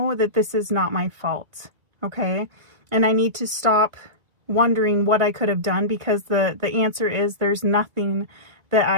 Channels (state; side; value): late; left; 1.4 ms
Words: that this is not my fault, okay? And I need to stop wondering what I could have done, because the answer is there's nothing that